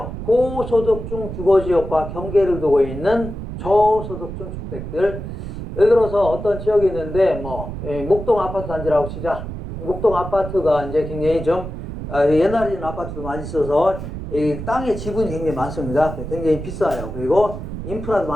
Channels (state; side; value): noise; right; rumble, 8 dB below the sound